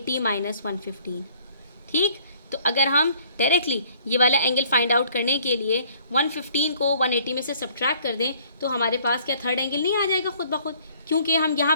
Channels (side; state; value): both; inverted; correlation -0.58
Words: minus 115, ठीक। तो अगर हम डायरेक्टली ये वाला एंगल फाइंड आउट करने के लिए 115 को 180 में से सब्ट्रैक्ट कर दें तो हमारे पास क्या थर्ड एंगल नहीं आ जाएगा खुद ब खुद, क्योंकि हम यहाँ